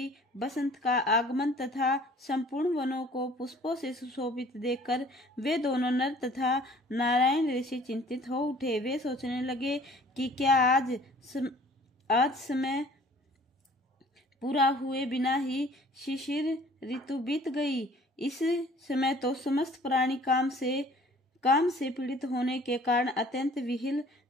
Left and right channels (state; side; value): normal; both; correlation 0.52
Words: बसंत का आगमन तथा संपूर्ण वनों को पुष्पों से सुशोभित देखकर वे दोनों नर तथा नारायण ऋषि चिंतित हो उठे। वे सोचने लगे कि क्या आज समय पूरा हुए बिना ही शिशिर ऋतु बीत गई। इस समय तो समस्त प्राणी काम से पीड़ित होने के कारण अत्यंत विहिल